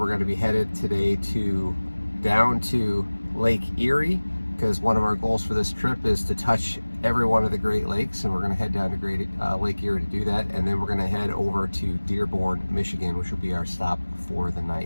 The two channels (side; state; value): both; inverted; correlation -1.00